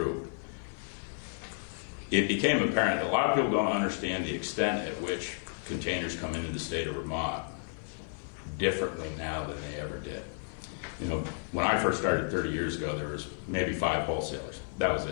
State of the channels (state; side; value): silent; right; 56 dB below the other